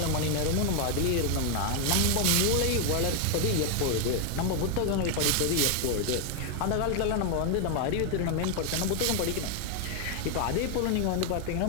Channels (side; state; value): both; different; correlation 0.01